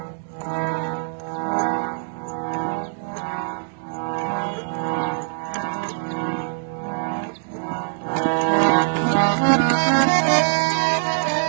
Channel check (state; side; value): silent; left; digital silence